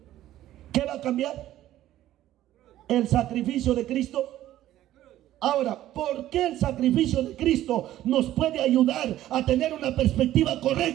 ¿Qué va a cambiar? El sacrificio de Cristo. Ahora, ¿por qué el sacrificio de Cristo nos puede ayudar a tener una perspectiva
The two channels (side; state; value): left; quieter; 13.6 dB